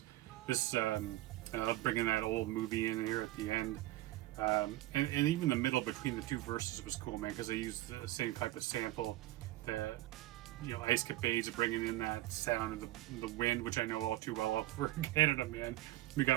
this bringing that old movie in here at the end, and even the middle between the two verses was cool, man, because they used the same type of sample. The Ice Capades bringing in that sound of the wind, which I know all too well over in Canada, man. We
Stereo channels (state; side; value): quieter; left; 16.6 dB